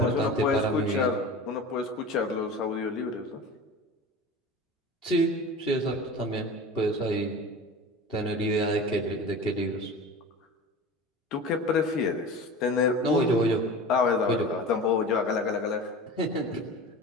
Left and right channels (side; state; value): both; normal; correlation 0.34